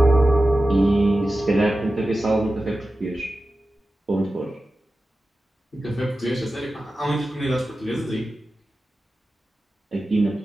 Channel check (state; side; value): normal; both; correlation 0.94